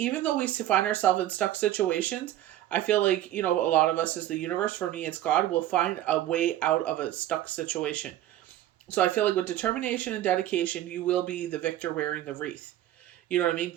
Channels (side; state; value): left; quieter; 13.3 dB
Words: though we find ourselves in stuck situations, I feel like, a lot of us as the universe, for me, it's God, will find a way out of a stuck situation. So I feel like with determination and dedication, you will be the victor wearing the wreath. You know what I mean?